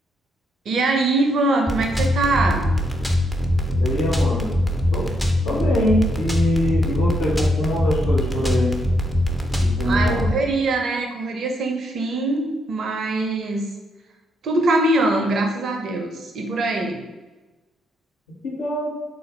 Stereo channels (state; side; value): normal; both; correlation 0.77